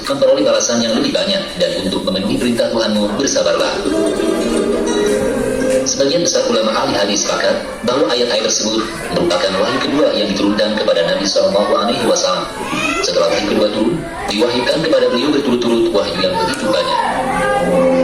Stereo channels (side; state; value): both; identical; correlation 1.00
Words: memperoleh balasan yang lebih banyak, dan untuk memenuhi perintah Tuhanmu bersabarlah." Sebagian besar ulama ahli hadis sepakat bahwa ayat-ayat tersebut merupakan wahyu kedua yang diturunkan kepada Nabi Shallallahu Alaihi Wasallam. Setelah wahyu kedua turun, diwahyukan kepada beliau berturut-turut wahyu yang begitu banyak.